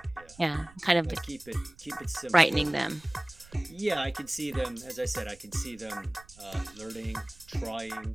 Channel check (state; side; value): noise; right; rumble, 23 dB below the sound